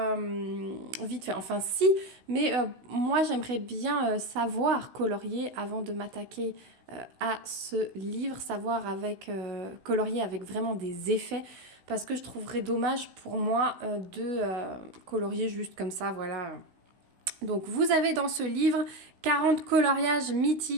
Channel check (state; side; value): late; left; 16 ms